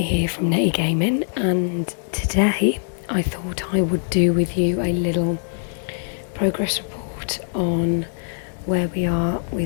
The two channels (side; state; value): right; silent; 60 dB below the other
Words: here from Nettie Gaming, and today I thought I would do with you a little progress report on where we are